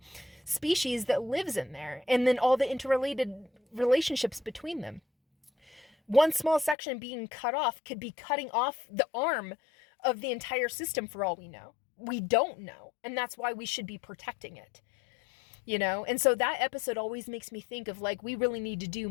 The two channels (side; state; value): right; drops out; at 6.8 s